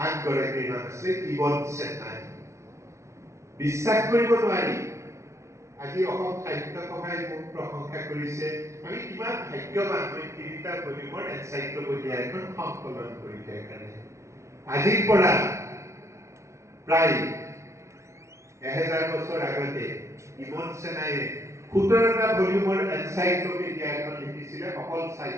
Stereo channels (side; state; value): left; late; 0.14 ms